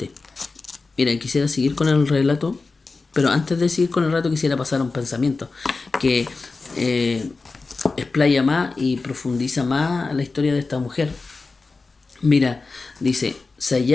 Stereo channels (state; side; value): quieter; right; 3.9 dB